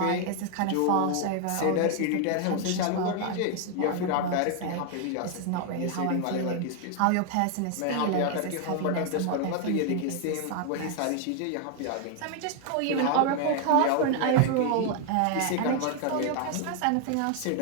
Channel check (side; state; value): both; different; correlation 0.00